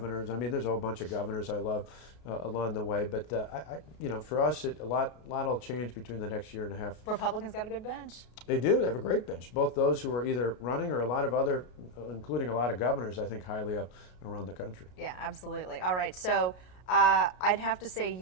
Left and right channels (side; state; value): right; late; 33 ms